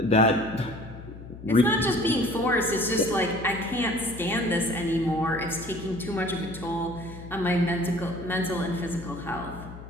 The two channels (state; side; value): noise; left; hum, 14 dB below the sound